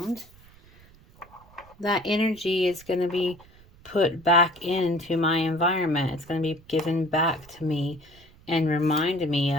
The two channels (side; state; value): right; noise; rumble, 25 dB below the sound